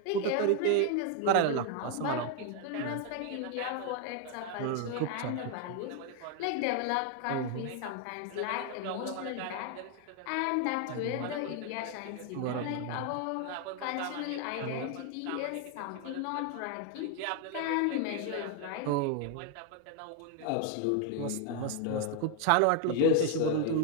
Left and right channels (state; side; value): different; both; correlation 0.01